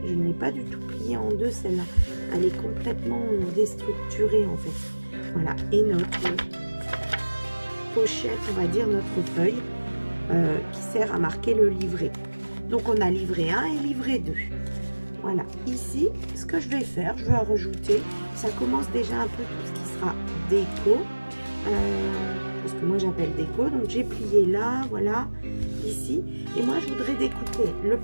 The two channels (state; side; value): inverted; both; correlation -1.00